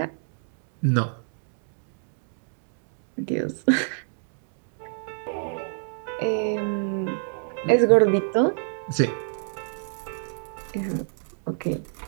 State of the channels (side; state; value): left; silent; digital silence